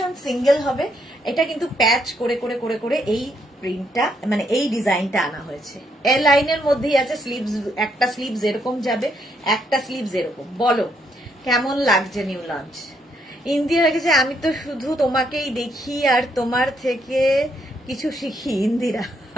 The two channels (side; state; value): both; normal; correlation 0.74